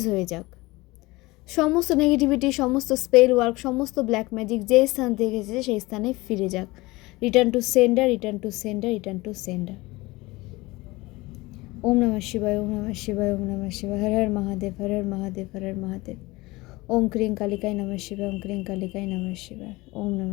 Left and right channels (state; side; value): quieter; right; 21.4 dB